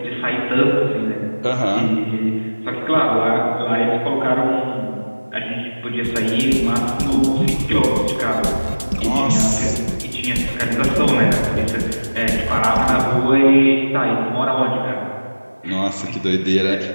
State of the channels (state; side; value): inverted; both; correlation -1.00